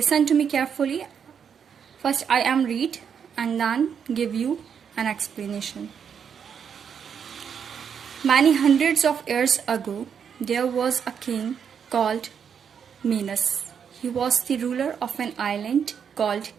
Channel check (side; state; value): left; quieter; 7.4 dB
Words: to me carefully. First I am read and then give you an explanation. Many hundreds of years ago, there was a king called Minos. He was the ruler of an island called